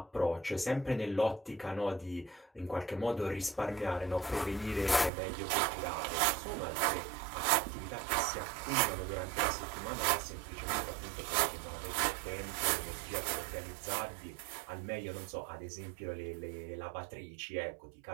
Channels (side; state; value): left; drops out; at 5.1 s